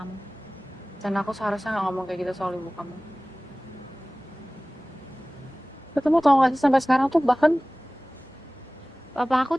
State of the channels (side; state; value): both; normal; correlation 0.98